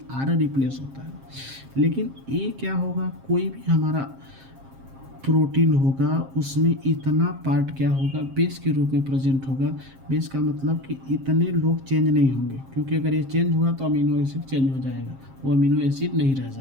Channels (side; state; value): left; late; 7.5 ms